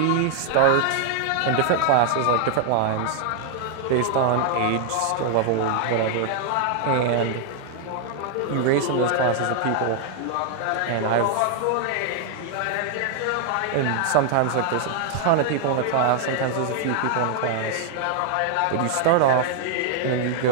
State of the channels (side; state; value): both; different; correlation 0.00